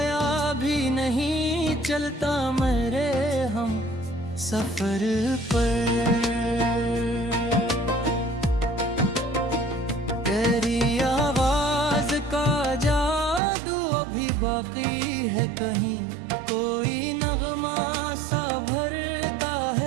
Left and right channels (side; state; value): left; drops out; at 13.4 s